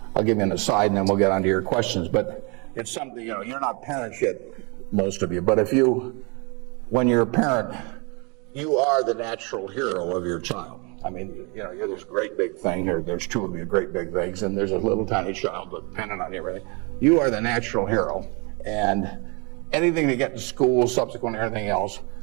I'll give you an aside, and then we'll get on to your questions. But it's something, you're not parents yet, most of you. But when you're a parent, you are the natural hero of your child. I mean, you're this great big thing, or there's two of you great big things, and there's a little tiny child dependent on you, everything. You are the natural hero, and anything they get in school, subsequent everything else,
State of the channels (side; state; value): left; quieter; 31.8 dB